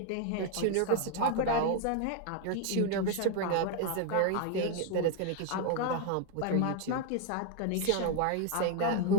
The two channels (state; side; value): different; both; correlation 0.01